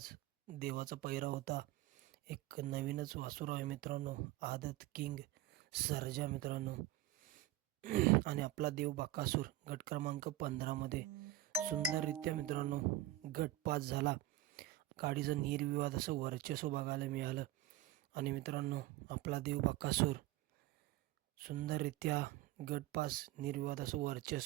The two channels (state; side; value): quieter; left; 15.1 dB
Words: देवाचा पैरा होता. एक नवीनच वासुर आहे मित्रांनो, आदत किंग सर्जा मित्रांनो. आणि आपला देव बकासूर गट क्रमांक 15 मध्ये सुंदररित्या मित्रांनो गट पास झाला. गाडीचं निर्विवाद असं वर्चस्व बघायला मिळालं. आणि मित्रांनो, आपला देव बकासूर सुंदररित्या गट पास निर्विवाद असं